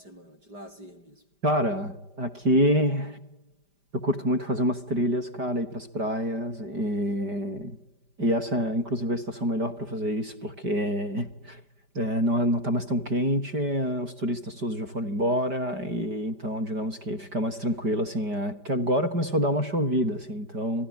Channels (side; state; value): left; late; 5.0 ms